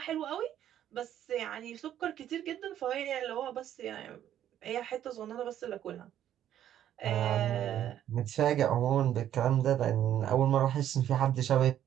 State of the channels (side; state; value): left; quieter; 11.1 dB